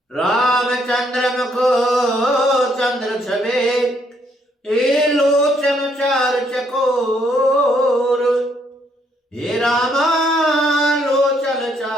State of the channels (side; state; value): both; normal; correlation 0.71